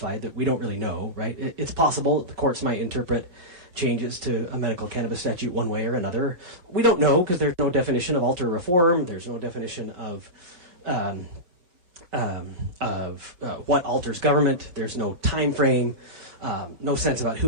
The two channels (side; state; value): left; late; 5.5 ms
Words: that we don't really know, right? It's possible that the courts might interpret changes to a medical cannabis statute one way or another. We don't know because there's no definition of alter reform. There's no definition of what alters government. There's no time frame, no sense about who